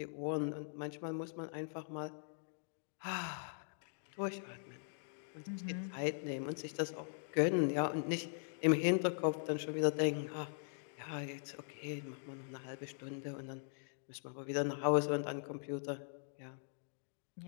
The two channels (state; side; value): silent; right; digital silence